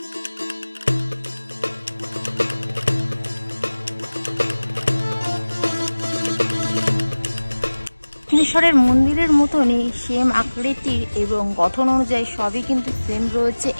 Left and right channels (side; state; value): both; inverted; correlation -1.00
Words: দক্ষিণেশ্বরের মন্দিরের মতনই সেম আকৃতির এবং গঠন অনুযায়ী সবই কিন্তু সেম রয়েছে